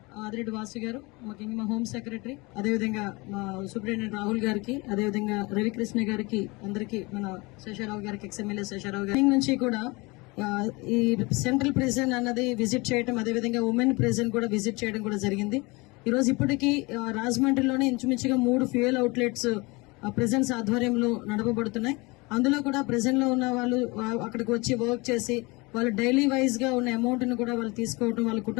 ఆదిరెడ్డి వాసు గారు, ముఖ్యంగా మా హోమ్ సెక్రటరీ, అదేవిధంగా మా సూపరింటెండెంట్ రాహుల్ గారికి, అదేవిధంగా రవికృష్ణ గారికి, అందరికీ మన శేషారావు గారికి, ఎక్స్ఎమ్మెల్యే శేషారావు గారి నుంచి కూడా ఈ సెంట్రల్ ప్రిజన్ అన్నది విజిట్ చేయడం, అదేవిధంగా ఉమెన్ ప్రిజన్ కూడా విజిట్ చేయడం కూడా జరిగింది. ఈ రోజు ఇప్పటికీ రాజమండ్రిలోనే ఇంచుమించుగా 3 ఫ్యూయల్ అవుట్లెట్స్ ప్రిజన్స్ ఆధ్వర్యంలో నడపబడుతున్నాయి. అందులో కూడా ప్రిజన్ లో ఉన్న వాళ్ళు అక్కడికి వచ్చి వర్క్ చేసి వాళ్ళు డైలీ వైజ్ గా ఉన్న అమౌంట్ ని కూడా వాళ్ళు తీసుకోవటం, వాళ్ళ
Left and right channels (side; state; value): right; quieter; 25.3 dB